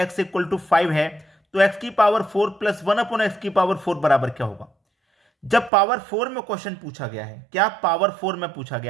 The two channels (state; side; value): drops out; left; at 5.7 s